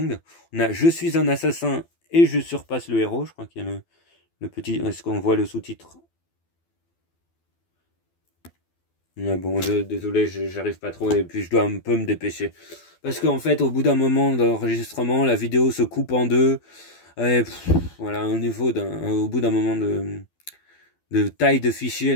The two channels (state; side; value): late; right; 12 ms